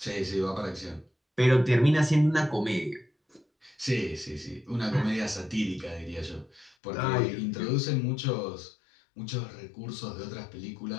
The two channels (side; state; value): right; drops out; at 6.8 s